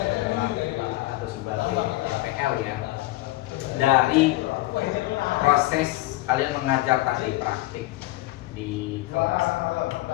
atau sebagai DPL ya. Dari proses kalian mengajar tadi praktik di kelas.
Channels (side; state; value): right; quieter; 18.4 dB